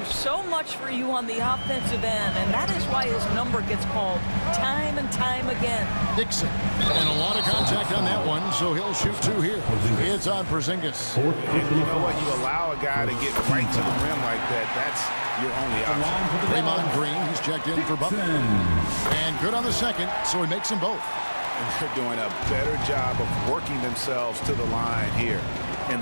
so much for you on the offensive end, and that is why his number gets called time and time again. Dixon. And a lot of contact on that one, so he'll shoot 2 here. It's on Porzingis. And you know what? You allow a guy to get right to the rim like that. That's your only option. Draymond Green, he's checked in for Butler. And good on the second, so he makes them both. And they're doing a better job of working themselves to the line here in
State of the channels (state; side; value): inverted; both; correlation -1.00